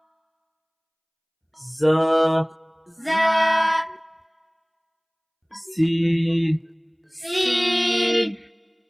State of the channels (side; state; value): both; identical; correlation 1.00